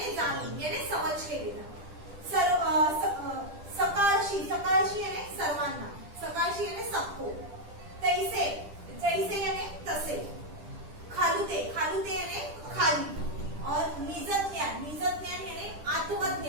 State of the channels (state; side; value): late; left; 10 ms